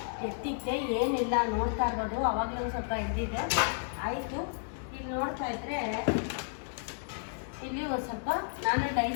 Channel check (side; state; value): right; silent; digital silence